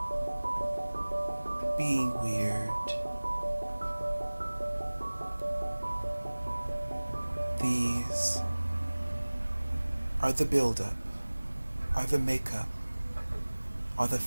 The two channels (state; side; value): inverted; both; correlation -1.00